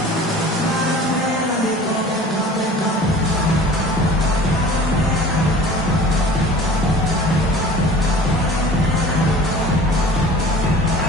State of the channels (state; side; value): normal; both; correlation 0.43